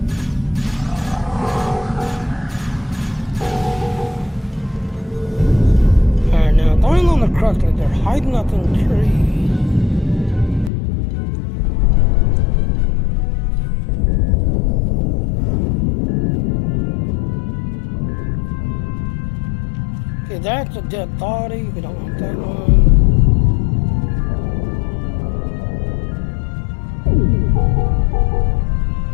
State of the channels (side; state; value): right; drops out; at 10.7 s